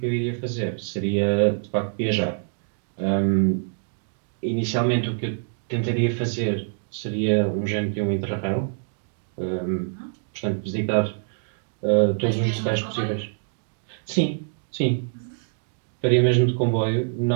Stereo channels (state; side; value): silent; left; digital silence